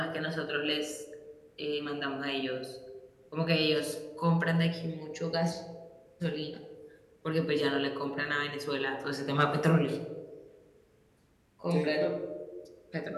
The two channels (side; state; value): both; identical; correlation 1.00